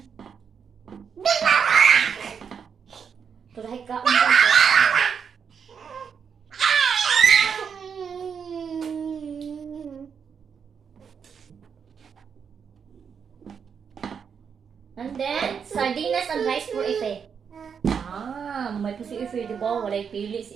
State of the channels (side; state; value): left; quieter; 6.8 dB